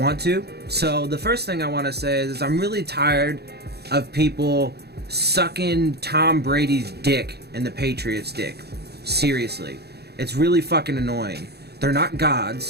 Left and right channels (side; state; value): left; late; 0.47 ms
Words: to. So the first thing I want to say is I'm really tired of people sucking Tom Brady's dick and the Patriots' dick. Seriously. It's really fucking annoying. They're not